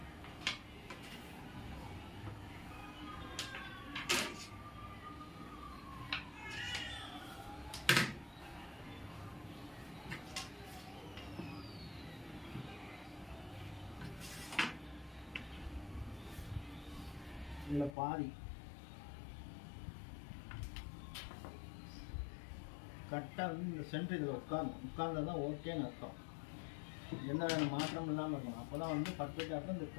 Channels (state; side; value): drops out; right; at 17.9 s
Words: இதில் பாதி கரெக்டாக வந்து இந்த சென்டர் இதில் உட்கார்ந்தா தான் ஓகேன்னு அர்த்தம். எந்த மாற்றம் இல்லாமல் இருக்கணும். அப்போ தான் வந்து பர்ஃபெக்டாக இருக்கும். இந்த